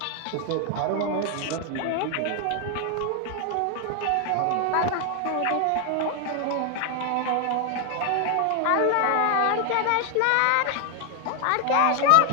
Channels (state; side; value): different; both; correlation 0.00